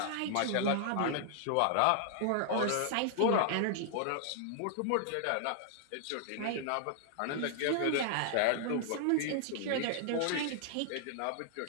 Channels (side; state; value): both; different; correlation 0.00